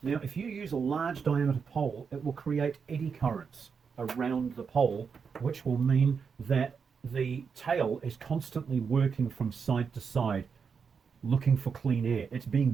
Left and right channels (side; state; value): left; quieter; 6.0 dB